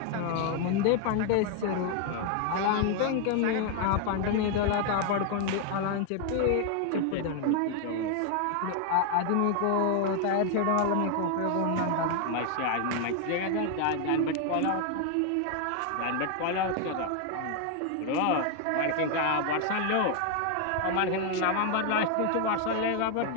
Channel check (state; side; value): different; both; correlation 0.00